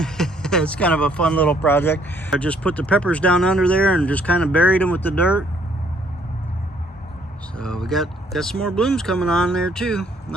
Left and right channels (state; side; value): normal; both; correlation 0.65